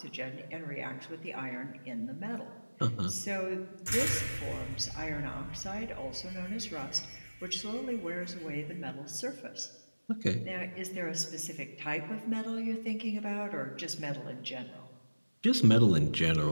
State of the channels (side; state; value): both; inverted; correlation -1.00